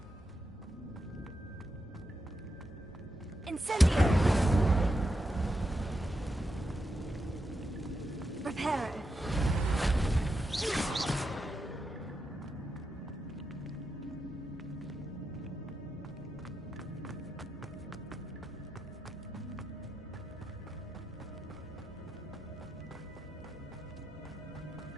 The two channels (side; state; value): both; normal; correlation 0.86